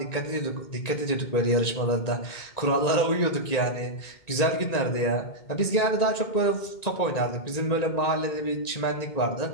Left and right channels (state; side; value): late; right; 1.9 ms